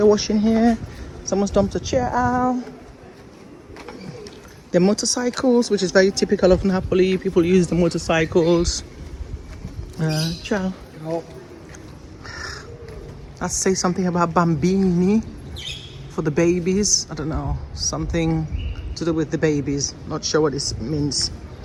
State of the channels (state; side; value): identical; both; correlation 1.00